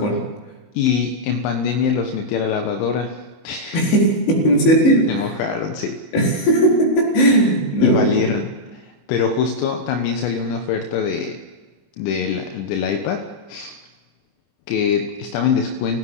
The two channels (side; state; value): right; late; 19 ms